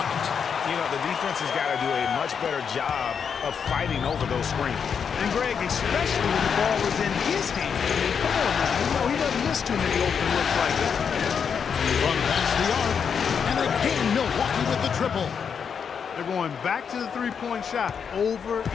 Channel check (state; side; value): quieter; right; 6.8 dB